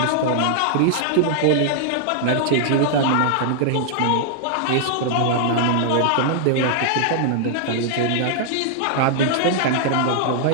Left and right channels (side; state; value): both; different; correlation -0.01